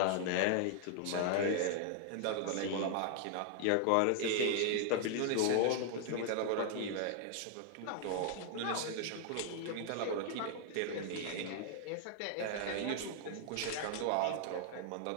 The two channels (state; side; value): different; both; correlation 0.00